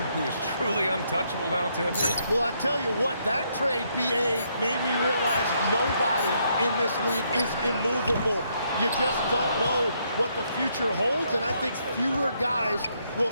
who is truly untouchable now, Tim? Well, I tell you what, that trade, BA, made me realize nobody in this league is immovable. You just don't know what the future holds, and I think fewer guys will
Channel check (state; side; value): inverted; both; correlation -0.74